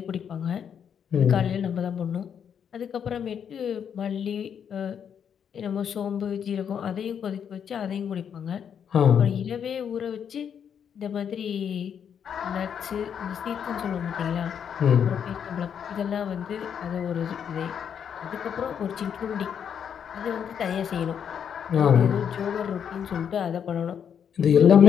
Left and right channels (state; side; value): quieter; right; 8.0 dB